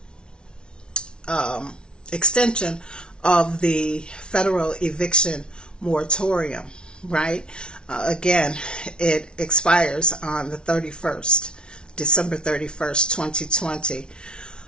extension of the federal eviction moratorium, right? Again, it expires on the 31st, December 31st, 2020,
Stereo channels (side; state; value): right; late; 0.056 ms